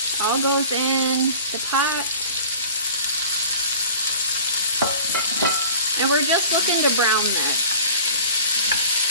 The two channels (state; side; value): inverted; both; correlation -0.46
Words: All goes in the pot. And we're just looking to brown this.